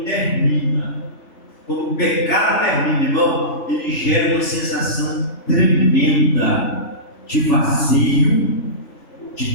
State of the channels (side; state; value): right; late; 3.4 ms